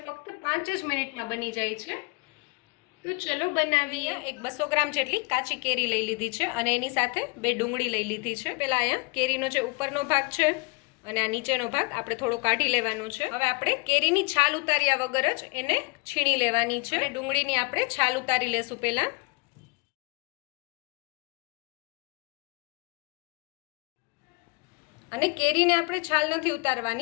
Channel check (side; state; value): right; quieter; 29.2 dB